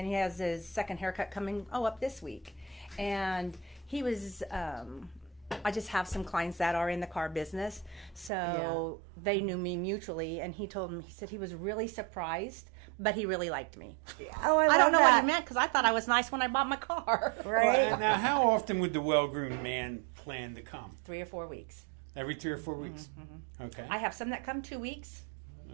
has his second haircut coming up this week. And he was, I just have some clients that are in the car business. So they knew me mutually. And he said he was really surprised, but he really liked me. Oh, I don't know that. what he meant, because I thought I was nice when I bought my car. Right? Well, now, how often would the well-groomed man plan to come? 3 or 4 weeks. Every 3 or 4 weeks. Okay. I have some that come 2 weeks.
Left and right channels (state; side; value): drops out; left; at 8.3 s